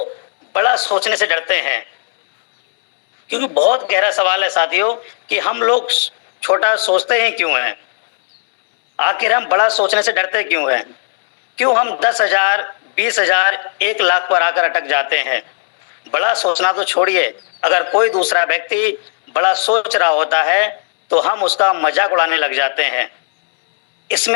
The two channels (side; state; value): right; silent; digital silence